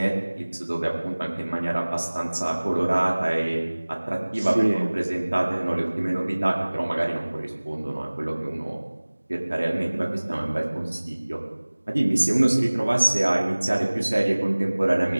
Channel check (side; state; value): both; inverted; correlation -1.00